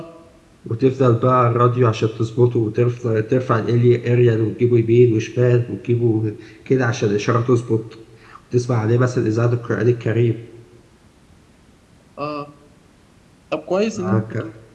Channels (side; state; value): both; identical; correlation 1.00